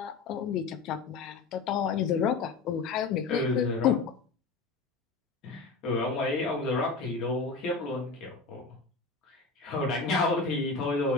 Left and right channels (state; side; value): quieter; right; 4.3 dB